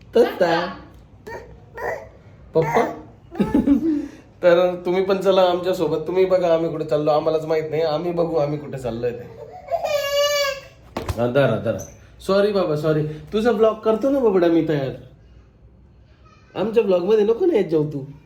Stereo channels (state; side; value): identical; both; correlation 1.00